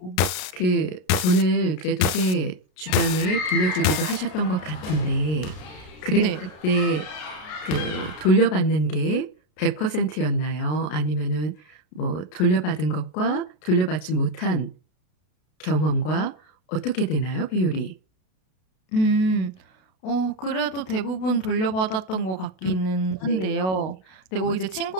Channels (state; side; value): late; right; 33 ms